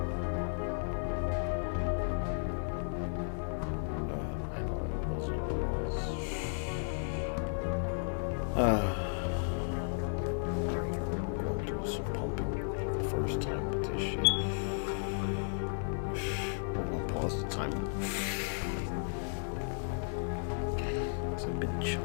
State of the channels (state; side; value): silent; right; digital silence